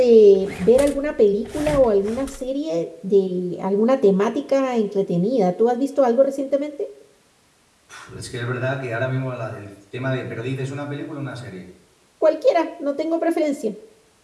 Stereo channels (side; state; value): both; identical; correlation 1.00